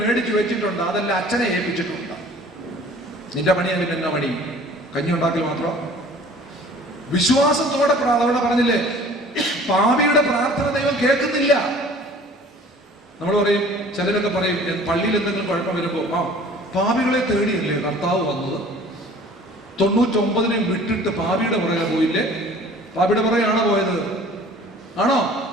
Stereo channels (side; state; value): both; normal; correlation 0.49